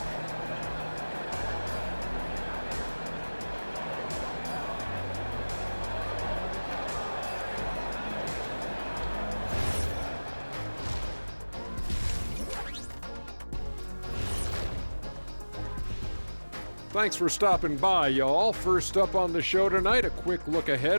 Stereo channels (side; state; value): both; inverted; correlation -1.00